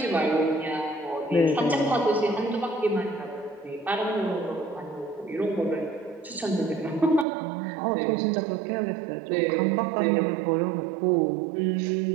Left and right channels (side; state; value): left; drops out; at 7.2 s